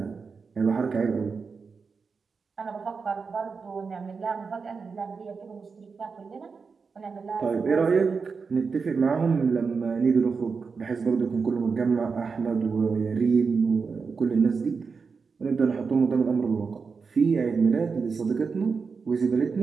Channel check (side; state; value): left; quieter; 5.1 dB